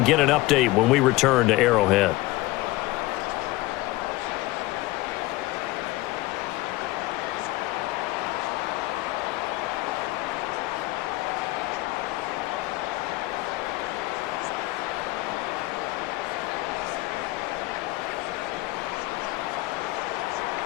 get an update when we return to Arrowhead.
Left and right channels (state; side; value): quieter; right; 19.4 dB